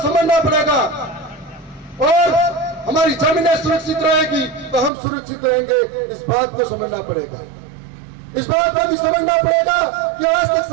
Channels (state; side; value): drops out; left; at 4.9 s